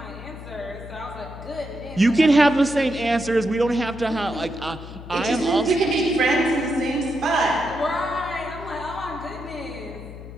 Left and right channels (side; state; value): left; noise; hum, 13 dB below the sound